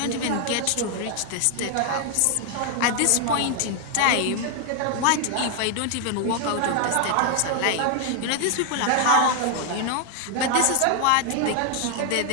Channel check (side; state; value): both; different; correlation 0.00